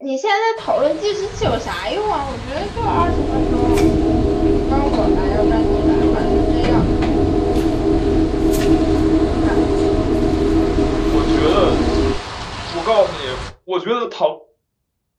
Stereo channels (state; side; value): identical; both; correlation 1.00